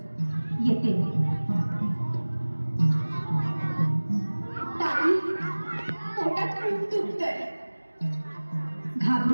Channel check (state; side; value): inverted; both; correlation -1.00